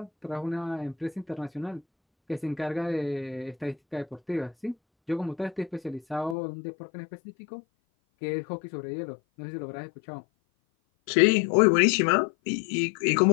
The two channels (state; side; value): drops out; right; at 6.4 s